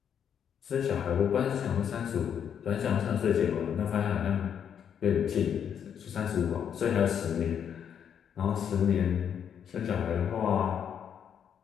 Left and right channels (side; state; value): right; quieter; 8.3 dB